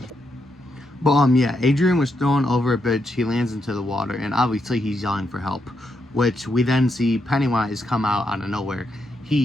But yeah, Adrian was thrown over a bridge. He lands into the water, and obviously he's yelling for help, which we then see Pennywise come out of nowhere.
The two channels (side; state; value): both; normal; correlation 0.81